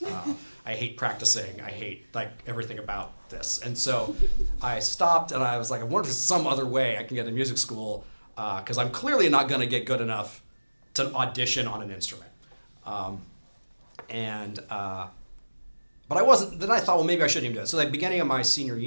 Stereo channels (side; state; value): both; inverted; correlation -1.00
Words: I hate practicing. I hate like everything about this. And so I stopped, and I was like, I wonder if there's some other way I can get into music school, because I'm clearly not going to get good enough to audition on an instrument. But I wasn't. Then I thought, well, maybe I shouldn't even do it. So like beginning of my senior